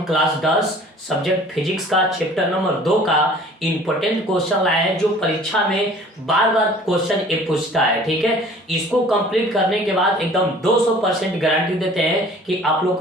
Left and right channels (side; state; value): both; normal; correlation 0.49